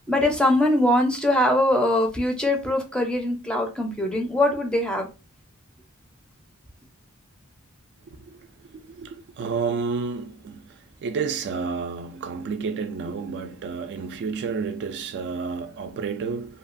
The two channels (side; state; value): both; normal; correlation 0.60